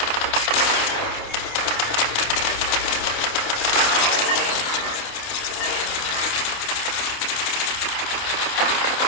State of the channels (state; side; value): late; right; 28 ms